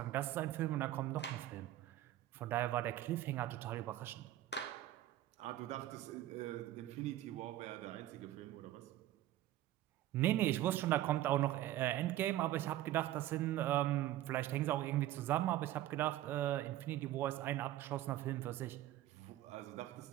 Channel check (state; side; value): quieter; left; 14.0 dB